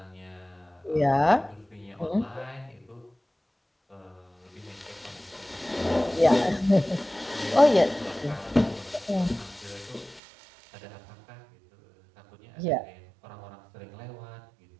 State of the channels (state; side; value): drops out; left; at 10.2 s